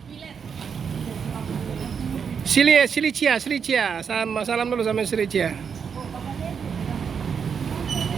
Silicia. Salam dulu sama Silicia.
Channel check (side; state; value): left; quieter; 6.7 dB